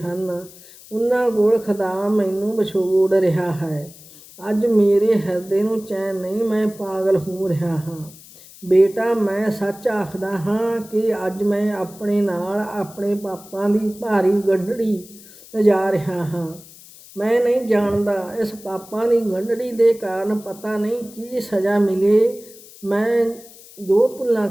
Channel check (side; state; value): left; noise; hiss, 21 dB below the sound